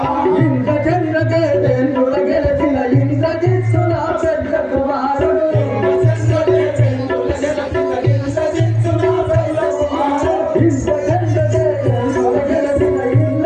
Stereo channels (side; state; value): both; identical; correlation 1.00